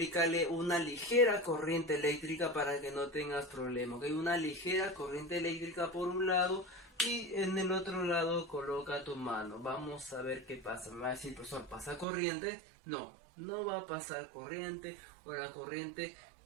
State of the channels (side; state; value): left; drops out; at 12.1 s